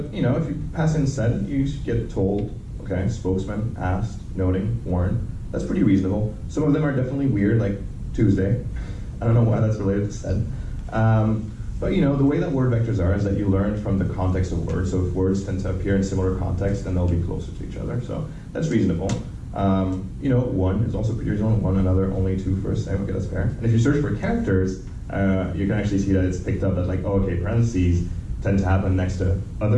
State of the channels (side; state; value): both; identical; correlation 1.00